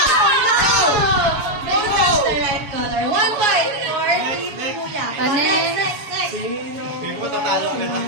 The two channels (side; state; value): left; late; 7.1 ms